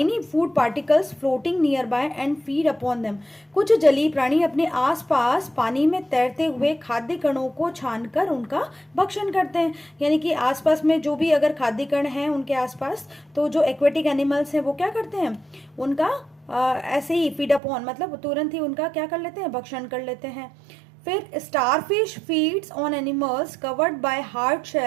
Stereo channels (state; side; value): drops out; left; at 17.6 s